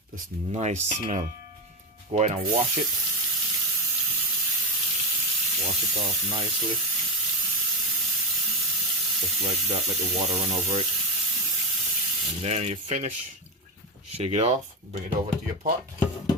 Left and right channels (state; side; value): normal; both; correlation 0.12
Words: This nice smell. Go ahead and wash it. Wash it off nicely. Just like that, let the water run over it. And then you finish. Shake it off, bring it over to your pot.